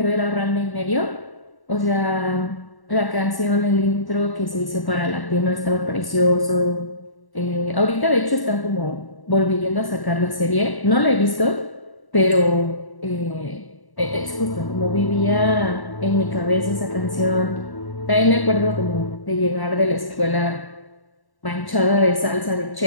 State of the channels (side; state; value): right; late; 1.1 ms